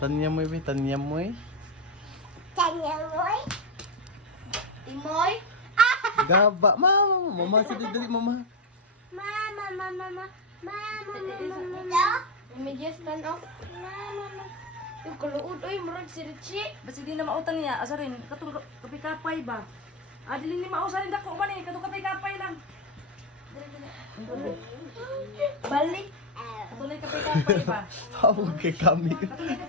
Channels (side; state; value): both; normal; correlation 0.07